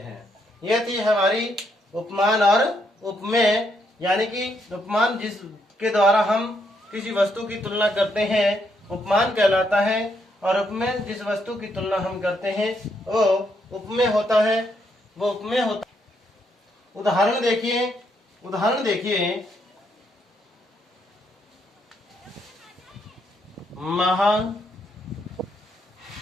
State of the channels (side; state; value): both; normal; correlation 0.76